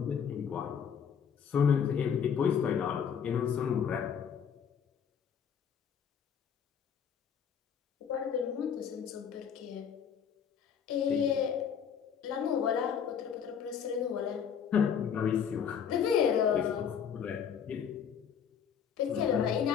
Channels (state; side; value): quieter; right; 7.6 dB